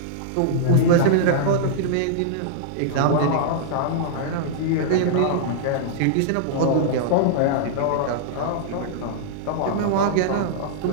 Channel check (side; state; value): both; different; correlation -0.01